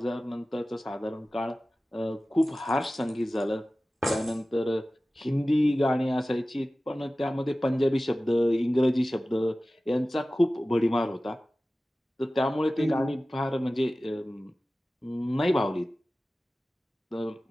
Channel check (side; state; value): both; normal; correlation 0.96